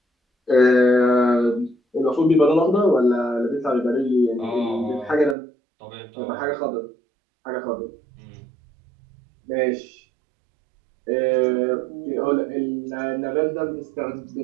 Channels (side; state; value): left; drops out; at 5.4 s